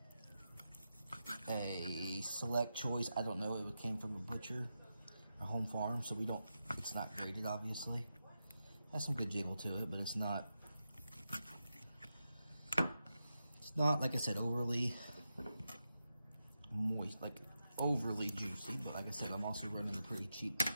a select choice. I don't know, it came from a butcher, a home farm, so it's not graded, obviously. Has some good jiggle to it, but it's not, like I said, overly moist, like overly juicy. But like I said, I'm also running a pretty cheap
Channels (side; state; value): both; inverted; correlation -0.88